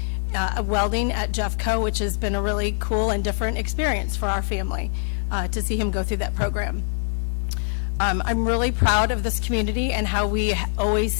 welding at Jeffco, which has been a really cool and different experience for our family to see him go through that program. I'm really proud of this community and how we always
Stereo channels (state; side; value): silent; right; digital silence